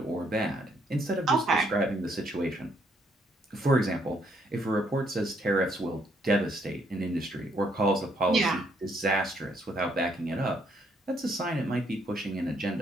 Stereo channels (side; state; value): both; normal; correlation 0.71